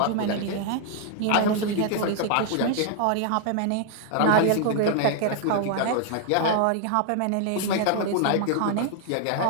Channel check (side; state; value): both; different; correlation 0.00